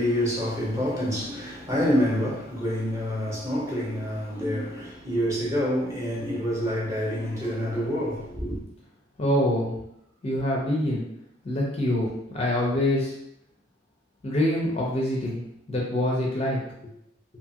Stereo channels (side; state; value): both; normal; correlation 0.65